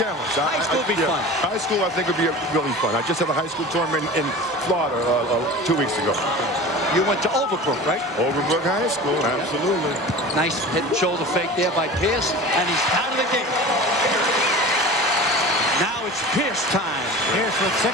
High school would be fun. High school, I think, would be really fun. I just had a high school tournament in Florida 2 weeks ago. You went to Overbrook, right? Overbrook High School, absolutely. Nice head and shoulder fake there by Pierce, and he's out of the game. Now it's Pierce time. Pierce with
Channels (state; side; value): normal; both; correlation 0.36